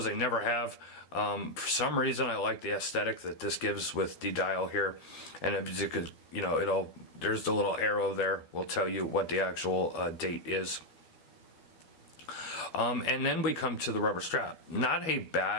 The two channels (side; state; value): right; late; 12 ms